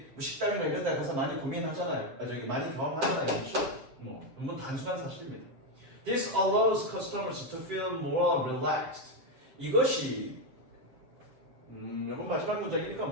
뭐 식당이나 이런 데 가서 많이 고민하잖아요. 많이 경험하잖아요. 그렇죠? 너무 단순한 사실입니다. This allows customers to feel more relaxed. 이것이 이건 마지막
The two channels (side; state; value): left; late; 7.6 ms